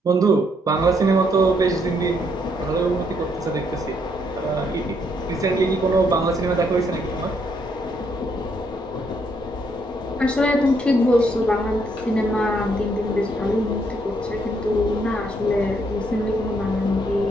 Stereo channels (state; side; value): normal; both; correlation 0.73